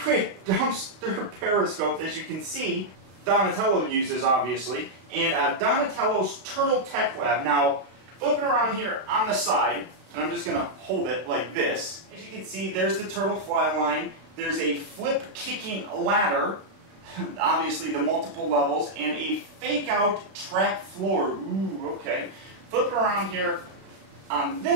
dumpster periscope, as you can see, Donatello uses, obviously, and Donatello's Turtle Tech Lab. Now, flipping around here on the side, and I'm just going to hold it like this. As you can see, there's the turtle fly line. There's a flip-kicking ladder, obviously the multiple levels, and a fake-out trap floor. Ooh, okay. Flipping around here on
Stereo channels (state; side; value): late; left; 33 ms